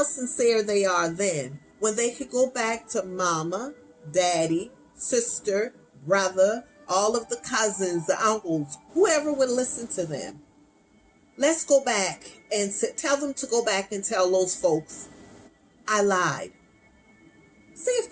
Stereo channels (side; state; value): both; identical; correlation 1.00